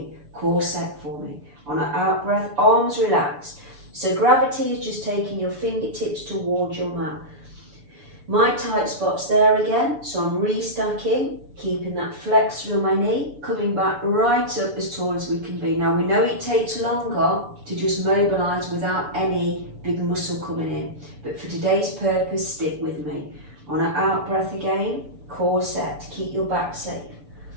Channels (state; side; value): late; left; 6.9 ms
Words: Core set for me. On an out breath, arms relaxed. So gravity is just taking your fingertips towards your mat. My tight spot's there again, so I'm restacking, keeping that flex through my knee, coming back right up as tall as we can be. Now we know it takes longer to just mobilise without any big muscle coming in, but for today's purpose, stick with me. On an out breath again, core set, keep your back safe.